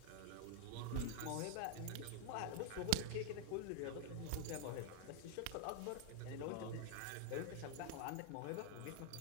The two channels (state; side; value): different; both; correlation 0.00